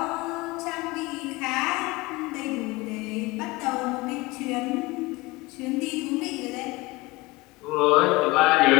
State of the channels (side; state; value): right; quieter; 21.9 dB